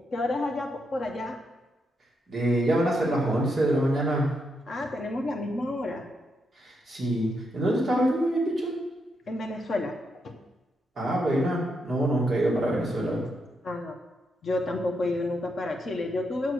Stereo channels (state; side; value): normal; both; correlation 0.81